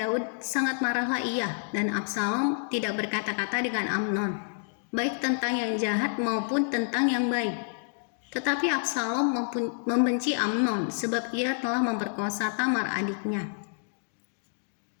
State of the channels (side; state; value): right; silent; digital silence